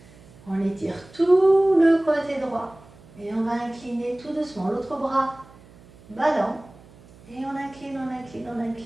On étire tout le côté droit. Et on va incliner tout doucement. L'autre bras ballon. Et on incline, on incline, on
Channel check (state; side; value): noise; right; hum, 24 dB below the sound